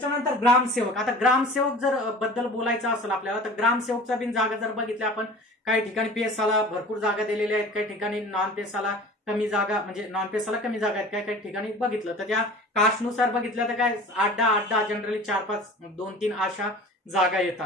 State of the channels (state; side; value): normal; both; correlation 0.41